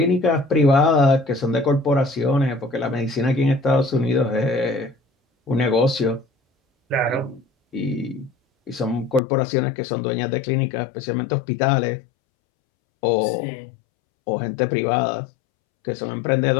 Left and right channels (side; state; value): right; drops out; at 9.2 s